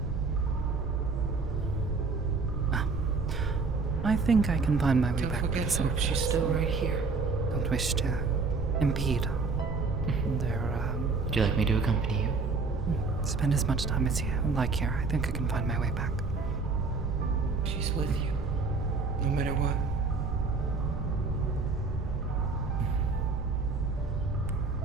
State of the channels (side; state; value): left; quieter; 4.2 dB